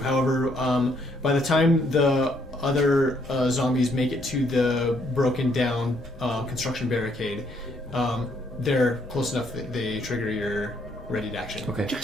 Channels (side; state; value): both; normal; correlation 0.69